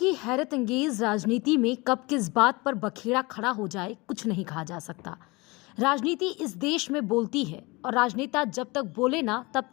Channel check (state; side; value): quieter; right; 24.6 dB